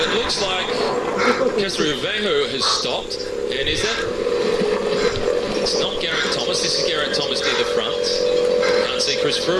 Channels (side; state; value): both; identical; correlation 1.00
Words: looks like Castrovejo has stopped. And is that... It's not Geraint Thomas. This is Geraint Thomas near the front. Can't see Chris